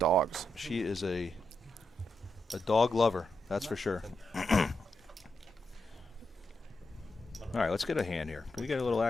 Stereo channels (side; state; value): both; normal; correlation 0.84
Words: She is a dog lover, that's for sure. All right, let's get a hand here. Can we get a little